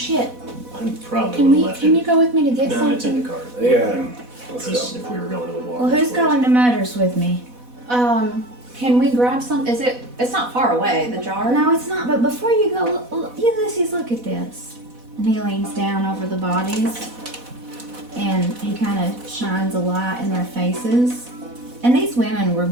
I probably Can would have we? left Can it. you go with me to get No, something? it's in the car. Yeah. Let's Just go. if we were going to the water. Well, who's going to Motors with me? Can we grab some? Is it? It's not far away. The jar. No, it's not. But before you go, Ulysses, look at this. And he leans down over the bodies, and he kind of shines a light in their faces. And these women were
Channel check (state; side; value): late; left; 4.1 ms